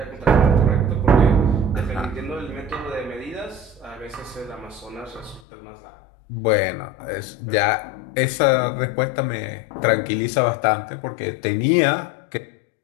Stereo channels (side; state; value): right; drops out; at 5.4 s